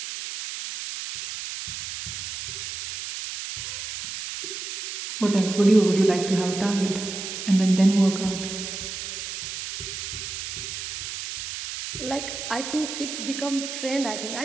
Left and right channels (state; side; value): noise; right; hiss, 6 dB below the sound